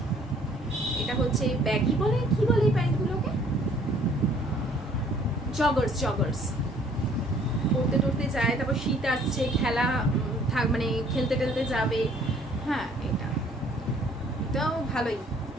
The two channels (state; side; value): normal; both; correlation 0.58